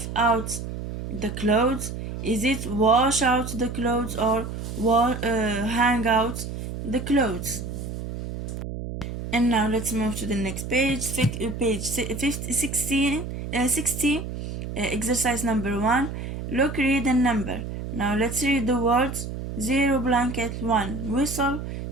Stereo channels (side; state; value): right; noise; hum, 7 dB below the sound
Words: out the clothes. Is it wash out the clothes or hang out the clothes? And now let's move to the next page, page 16, 60, exercise number 1. Look, read, and number. Now let's read the words. 0, blanket. 1, whistle.